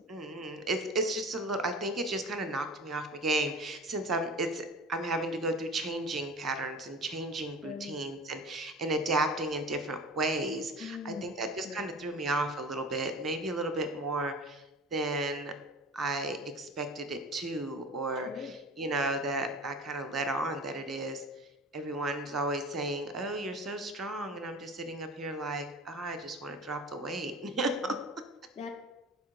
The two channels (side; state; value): both; normal; correlation 0.37